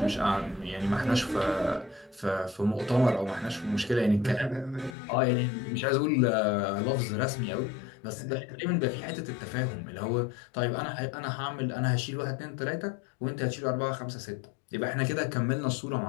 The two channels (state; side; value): drops out; right; at 5.0 s